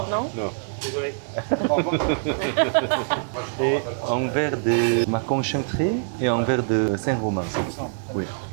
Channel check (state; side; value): silent; left; digital silence